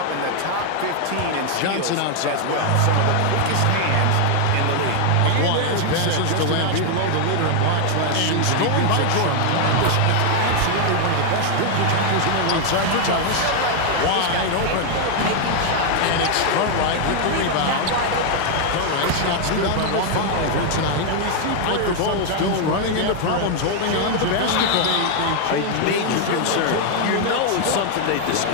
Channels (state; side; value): different; both; correlation 0.00